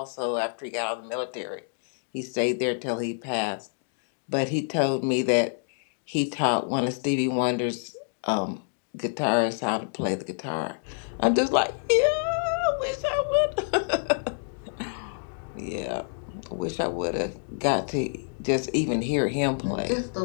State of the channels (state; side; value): silent; right; digital silence